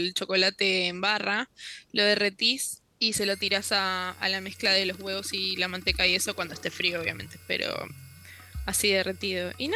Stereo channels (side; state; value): both; identical; correlation 1.00